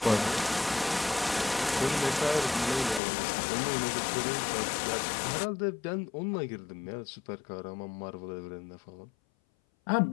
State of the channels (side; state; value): right; drops out; at 3.0 s